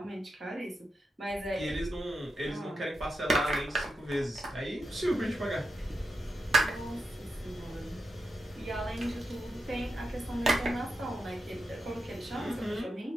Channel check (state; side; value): normal; both; correlation 0.87